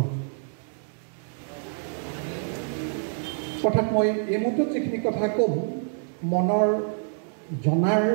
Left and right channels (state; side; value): silent; left; 60 dB below the other